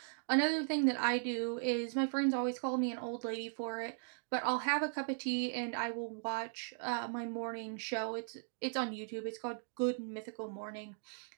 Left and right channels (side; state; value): left; silent; digital silence